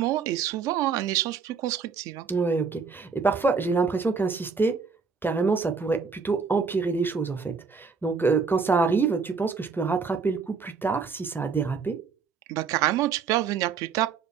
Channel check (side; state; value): left; quieter; 5.4 dB